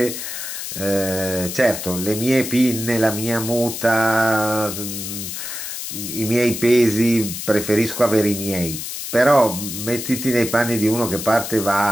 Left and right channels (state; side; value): noise; left; hiss, 7 dB below the sound